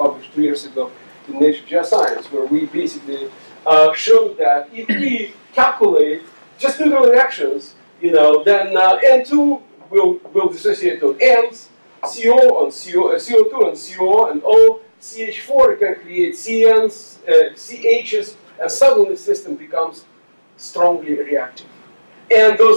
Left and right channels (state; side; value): inverted; both; correlation -1.00